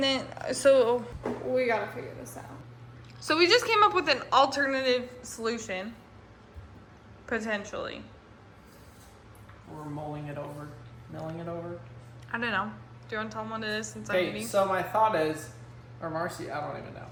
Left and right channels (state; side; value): identical; both; correlation 1.00